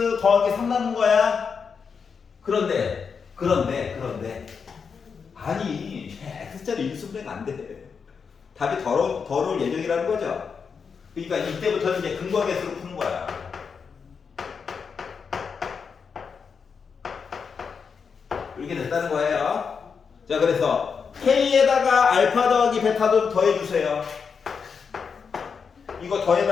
더하기 3 남은 거야. 그런데. 아니, x자리 일수분해가 안 돼. 답이 더러울 예정이라는 거죠. 그러니까 이때부터는 이제 근거계수로 푸는 거야. 이렇게 됐다는 거예요. 자, 그래서 K에다가 알파 더하기 베타도 더해주세요. 이거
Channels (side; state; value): right; quieter; 5.9 dB